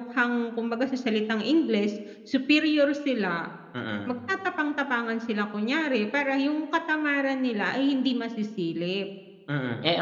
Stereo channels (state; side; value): identical; both; correlation 1.00